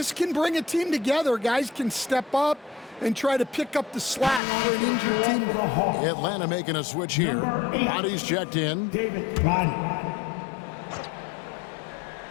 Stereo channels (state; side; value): drops out; right; at 4.4 s